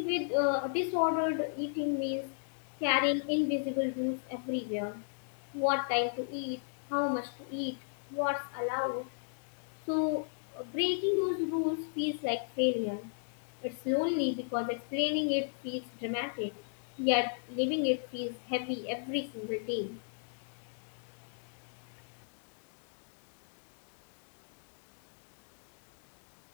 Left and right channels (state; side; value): silent; right; digital silence